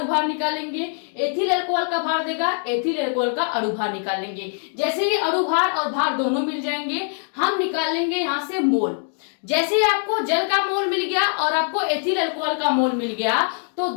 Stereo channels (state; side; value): silent; right; 59 dB below the other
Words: भार निकालेंगे, एथिल अल्कोहल का भार देगा, एथिल अल्कोहल का अणु भार निकालेंगे। जैसे ही अणु भार और भार दोनों मिल जाएंगे, हम निकाल लेंगे यहाँ से मोल। जैसे ही आपको जल का मोल मिल गया और आपको एथिल अल्कोहल का मोल मिल गया, तो